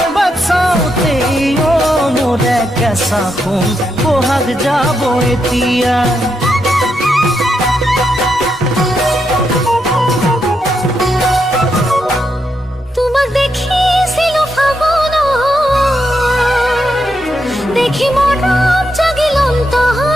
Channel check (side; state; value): both; normal; correlation 0.82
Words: বাচ্চাওতে ও মোরে কেঁচা খুন বহাগ যাব এতিয়া দেখি মরম জাগিল